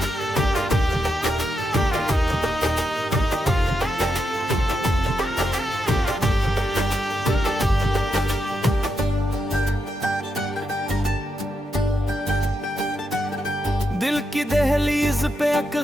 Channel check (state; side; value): normal; both; correlation 0.83